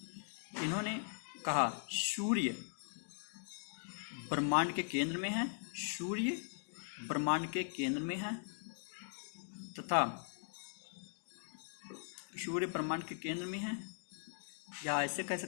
इन्होंने कहा सूर्य ब्रह्मांड के केंद्र में है, सूर्य ब्रह्मांड के केंद्र में है, तथा सूर्य ब्रह्मांड के केंद्र में है, या ऐसे कह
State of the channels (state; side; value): silent; right; digital silence